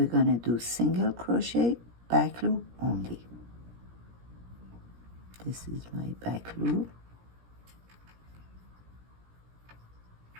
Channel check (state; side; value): late; left; 17 ms